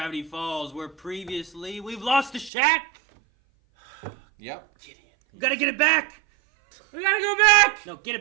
Falls, where previously we've lost the shack. Yep. Gideon. We gotta get it back. We gotta go back. No, get it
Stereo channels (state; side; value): drops out; left; at 2.5 s